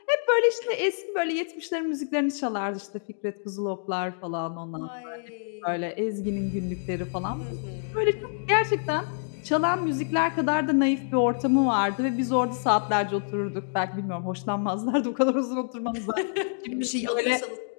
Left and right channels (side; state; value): right; silent; digital silence